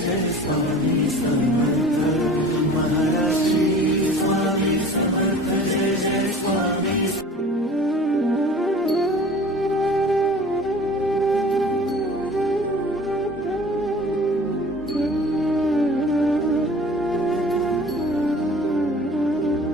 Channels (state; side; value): normal; both; correlation 0.44